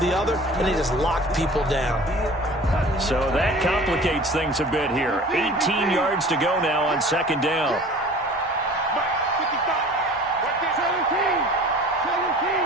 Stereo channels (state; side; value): normal; both; correlation 0.44